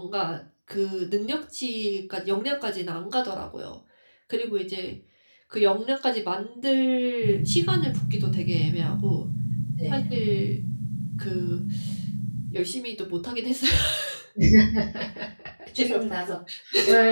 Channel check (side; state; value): both; inverted; correlation -1.00